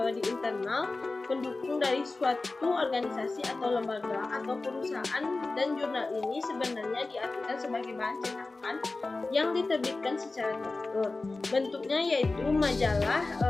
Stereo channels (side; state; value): right; quieter; 3.4 dB